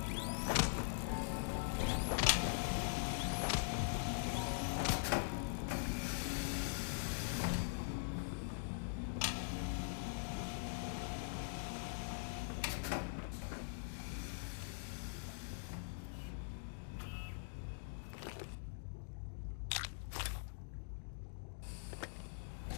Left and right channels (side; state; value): right; silent; digital silence